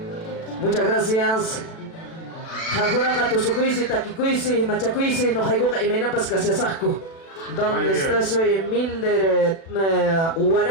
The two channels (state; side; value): late; right; 36 ms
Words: Muchas gracias. Jajunaka tusukuisi, takikuisi, machakuisi, no jaigoka y menapas casiasasco. ¿Dónde Ay, está? Soy Milder